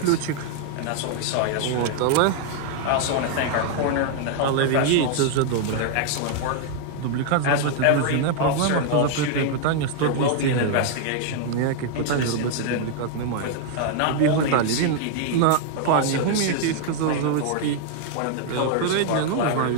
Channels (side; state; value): both; different; correlation 0.00